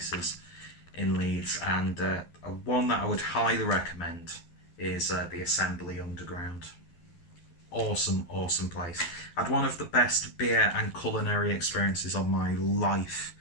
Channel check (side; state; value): right; late; 12 ms